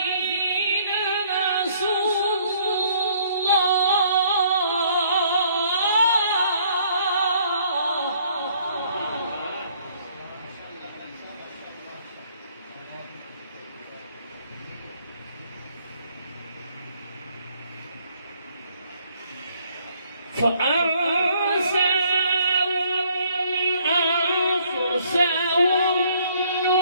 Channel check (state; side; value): inverted; both; correlation -0.63